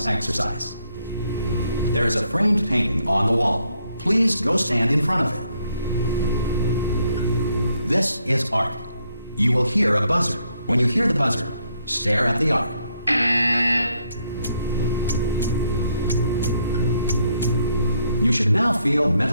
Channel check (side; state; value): both; inverted; correlation -0.73